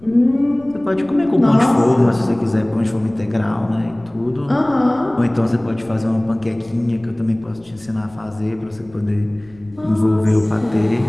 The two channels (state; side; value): noise; left; rumble, 25 dB below the sound